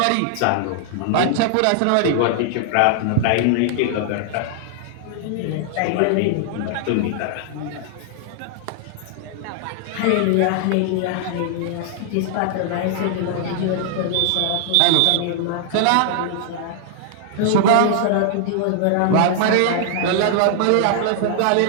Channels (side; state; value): both; different; correlation -0.01